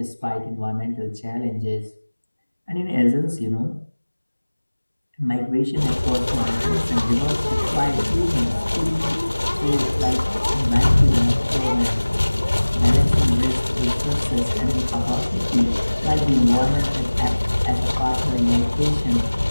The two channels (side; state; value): both; inverted; correlation -1.00